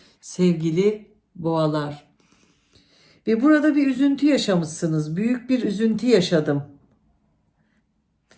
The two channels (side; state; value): both; identical; correlation 1.00